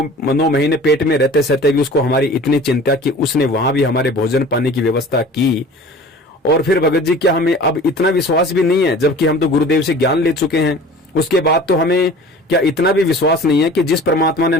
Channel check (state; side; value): normal; both; correlation 0.43